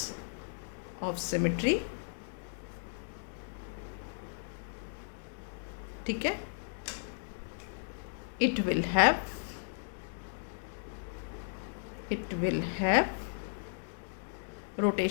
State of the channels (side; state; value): right; silent; digital silence